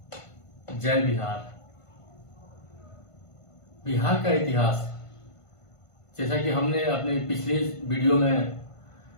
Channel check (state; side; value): late; right; 1.5 ms